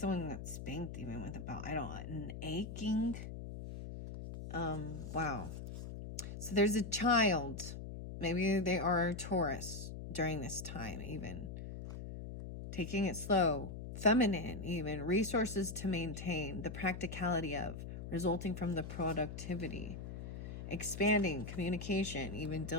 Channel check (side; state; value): left; noise; hum, 8 dB below the sound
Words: got spanked even with a belt. I don't, an aching. Wow. So there's a child. Maybe they are Taurus during this time even. Taking it slow. Feminine even. Resources to maintain. The practicality of. Resulting from the productivity. Expanding. Communication. Even